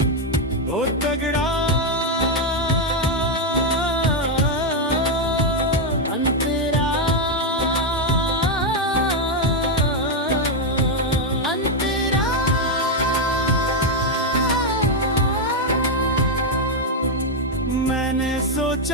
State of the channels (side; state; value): both; normal; correlation 0.02